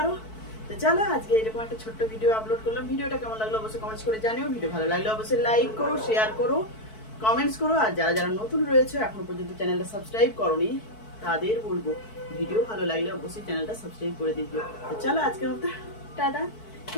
তো চলো আজকে এরকম একটা ছোট্ট ভিডিও আপলোড করলাম। ভিডিওটা কেমন লাগলো অবশ্যই কমেন্টস করে জানিও। ভিডিও ভালো লাগলে অবশ্যই লাইক করো, শেয়ার করো, কমেন্টস করো। আর যারা যারা নতুন রয়েছে এখনো পর্যন্ত চ্যানেলটা সাবস্ক্রাইব করোনি, তাদের বলবো ভিডিও ভালো লাগলে অবশ্যই চ্যানেলটা সাবস্ক্রাইব করে দিও। তো চলো আজকের মতো টাটা,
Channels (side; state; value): right; late; 4.6 ms